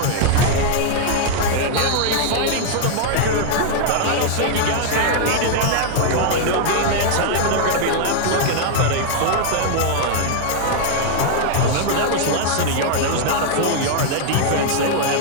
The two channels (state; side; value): different; both; correlation 0.00